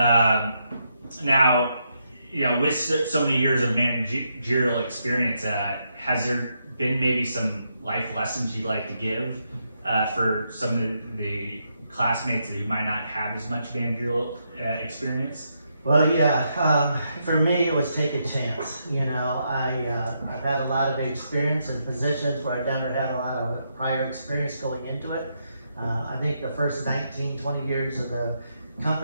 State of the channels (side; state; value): both; inverted; correlation -0.80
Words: Now, with so many years of managerial experience, has there been maybe some life lessons you'd like to give for some of the classmates who might not have as much managerial experience? Well, yeah, for me it was take a chance. I've had a lot of experience in positions where I've never had a lot of prior experience going into it. I think the first 19, 20 years of the